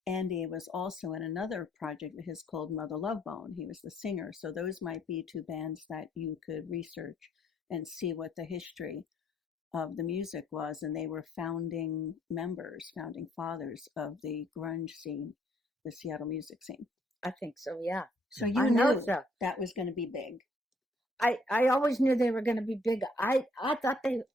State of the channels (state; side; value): normal; both; correlation 0.67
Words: Andy was also in another project of his called Mother Love Bone. He was the singer. So those might be two bands that you could research and see what the history of the music was. And they were founding members, founding fathers of the grunge scene, the Seattle music scene. I think so, yeah. So I you know knew so. that was going to be big. I always knew they were going to be big. I